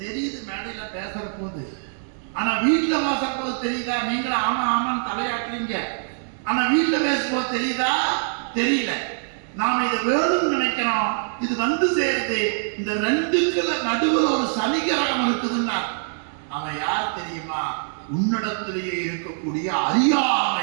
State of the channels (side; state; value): left; silent; digital silence